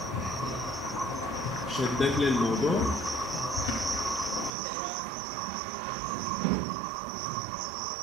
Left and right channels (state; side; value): drops out; left; at 4.5 s